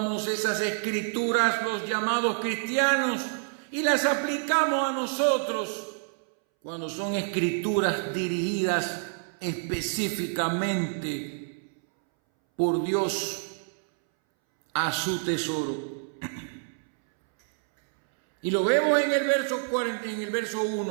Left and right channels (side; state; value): left; silent; 60 dB below the other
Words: esas escrituras, los llamados cristianos, y las aplicamos a nosotros cuando son escrituras dirigidas específicamente por Dios a su tesoro. Y lo vemos en el verso 40, en el verso